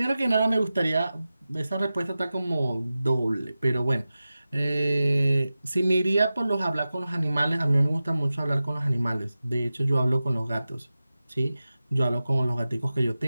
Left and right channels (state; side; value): inverted; both; correlation -0.94